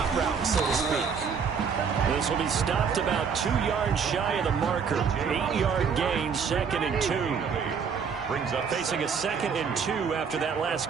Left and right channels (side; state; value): left; quieter; 6.3 dB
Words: route, so to speak. This will be stopped about 2 yards shy of the marker. 8-yard gain, 2nd and 2. Brings up facing a 2nd and 2 after that last